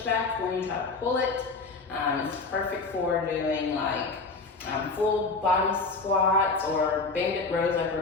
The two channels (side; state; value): right; quieter; 3.9 dB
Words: when you try to pull it. It's perfect for doing like full body squats or banded rows like